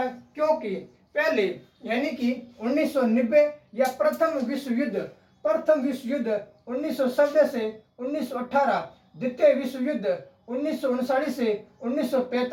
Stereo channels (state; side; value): identical; both; correlation 1.00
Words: क्योंकि पहले यानी कि 1990 या प्रथम विश्व युद्ध 1970 से 1918, द्वितीय विश्व युद्ध 1939 से